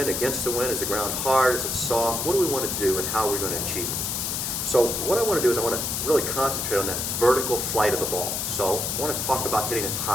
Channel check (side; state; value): left; noise; hiss, 1 dB below the sound